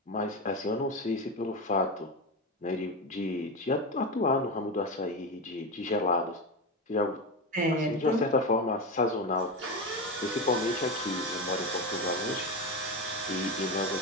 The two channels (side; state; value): both; normal; correlation 0.19